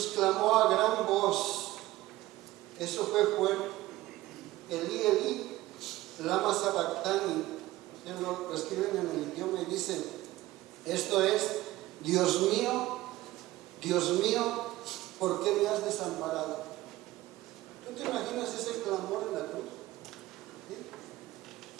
clamó a gran voz. Eso fue fuerte. Elí, Elí, lama sabactani. Lo escriben en el idioma y dice, esto es, Dios mío, ¿por qué me has desamparado? ¿Tú te imaginas ese clamor en la cruz? ¿Sí?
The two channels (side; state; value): left; quieter; 17.1 dB